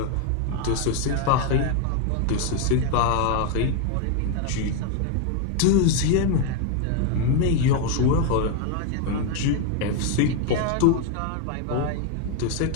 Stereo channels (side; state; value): both; different; correlation 0.01